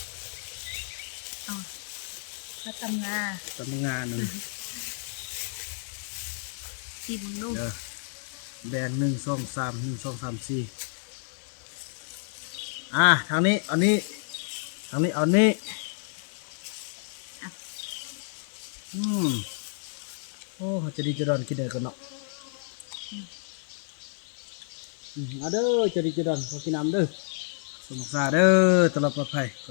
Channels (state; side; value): silent; right; 58 dB below the other